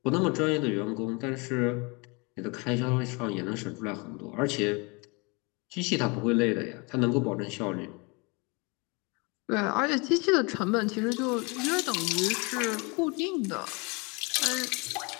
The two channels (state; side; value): quieter; right; 29.4 dB